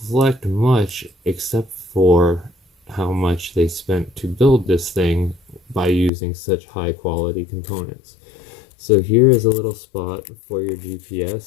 much, except for how much they spent to build this thing by using such high quality components. So here is a little spot for your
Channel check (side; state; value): right; drops out; at 6.1 s